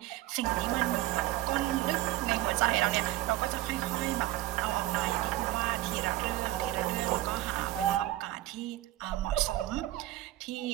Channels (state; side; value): quieter; left; 15.9 dB